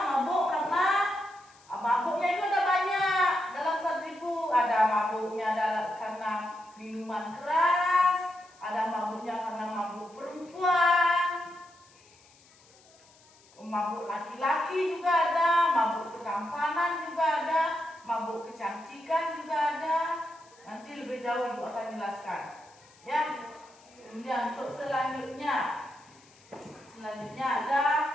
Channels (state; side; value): noise; left; hiss, 28 dB below the sound